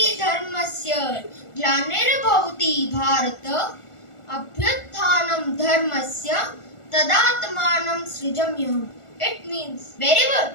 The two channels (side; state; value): right; late; 1.4 ms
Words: dharmasya glanirabhavati bharata abhyuthanam dharmasya tadatmanam srijamyaham. It means